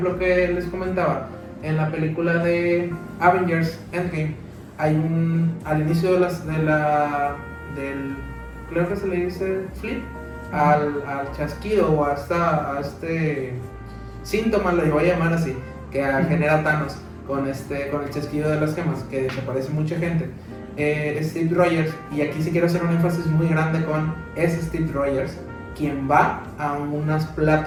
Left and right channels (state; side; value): identical; both; correlation 1.00